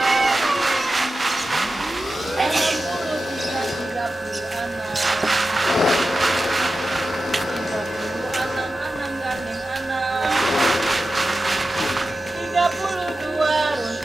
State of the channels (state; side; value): normal; both; correlation 0.92